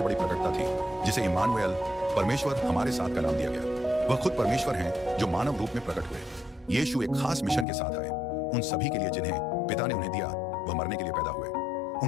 बड़ी प्रकटता थी, जिसे इम्मानुएल, परमेश्वर हमारे साथ का नाम दिया गया। वह खुद परमेश्वर हैं जो मानव रूप में प्रकट हुए। यीशु एक खास मिशन के साथ आए, उन सभी के लिए जिन्हें पिता ने उन्हें दिया, वह मरने के लिए पैदा हुए।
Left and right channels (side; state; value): right; drops out; at 7.7 s